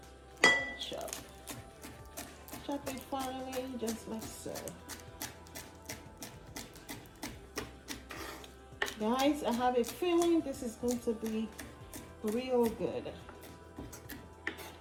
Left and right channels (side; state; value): both; identical; correlation 1.00